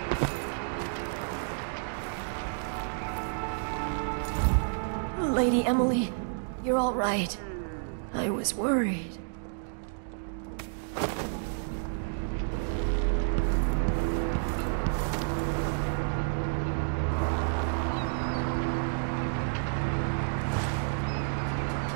Lady Emily, you're all right. I was worried.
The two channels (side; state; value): left; silent; digital silence